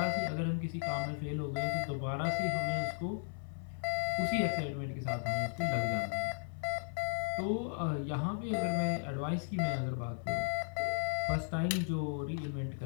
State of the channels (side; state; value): right; silent; 54 dB below the other